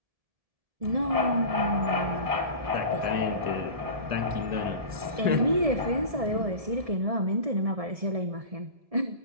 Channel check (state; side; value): late; left; 1.7 ms